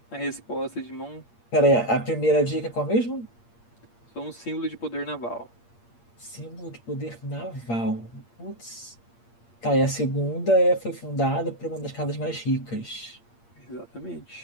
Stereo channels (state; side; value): late; right; 8.6 ms